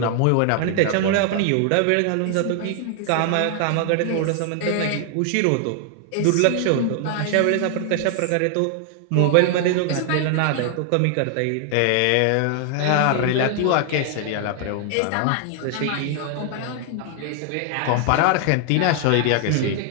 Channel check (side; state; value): both; different; correlation 0.00